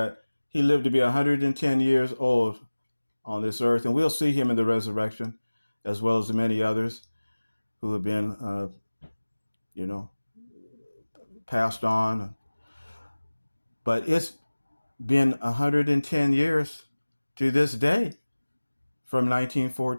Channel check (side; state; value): both; inverted; correlation -1.00